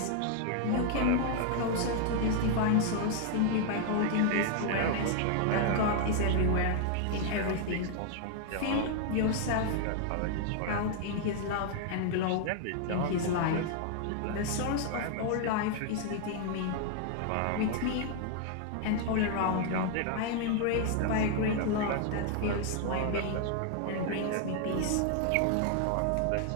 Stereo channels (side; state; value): both; different; correlation 0.00